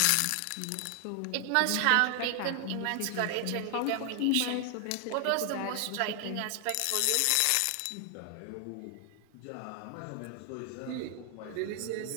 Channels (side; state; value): both; different; correlation 0.00